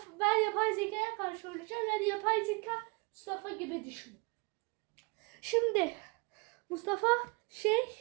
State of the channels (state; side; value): quieter; left; 29.9 dB